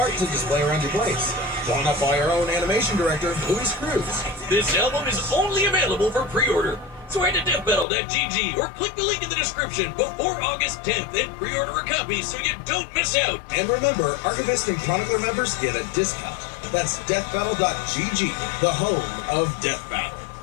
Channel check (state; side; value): drops out; right; at 7.9 s